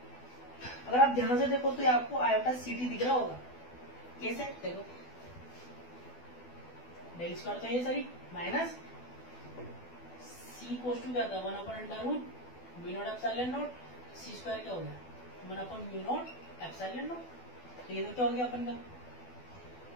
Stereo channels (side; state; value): right; late; 12 ms